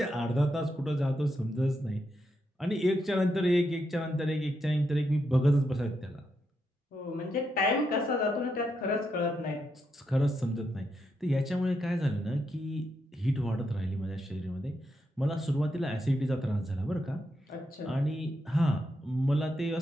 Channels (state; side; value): normal; both; correlation 0.82